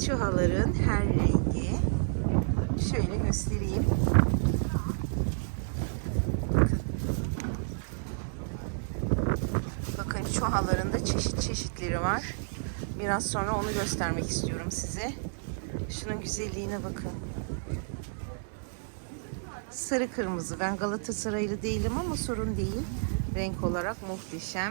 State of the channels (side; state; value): left; silent; 58 dB below the other